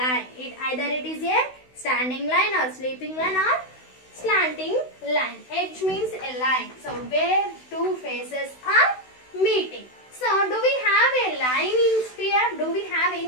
Either it is a standing line or sleeping line or slanting line. Edge means a line. So where two faces are meeting. So do we have a line in sphere? Do we have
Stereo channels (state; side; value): late; right; 16 ms